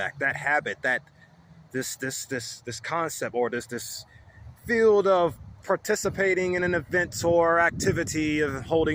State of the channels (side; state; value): both; identical; correlation 1.00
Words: that habit, that this concept, or this field of participating in an event or activity of